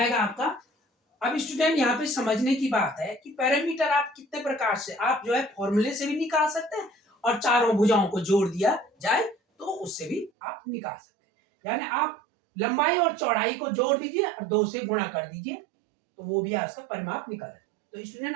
आपका। अब स्टूडेंट यहाँ पे समझने की बात है कि पैरामीटर आप कितने प्रकार से, आप जो है फॉर्मूले से भी निकाल सकते हैं और चारों भुजाओं को जोड़ दिया जाए तो उससे भी आप निकाल सकते हैं। यानी आप लंबाई और चौड़ाई को जोड़ दीजिए और 2 से गुणा कर दीजिए तो वो भी आपका परिमाप निकल है। तो स्टूडेंट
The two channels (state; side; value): drops out; left; at 10.3 s